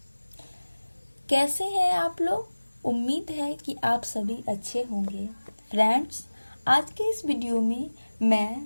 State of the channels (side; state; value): both; inverted; correlation -1.00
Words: कैसे हैं आप लोग? उम्मीद है कि आप सभी अच्छे होंगे। फ्रेंड्स, आज के इस वीडियो में मैं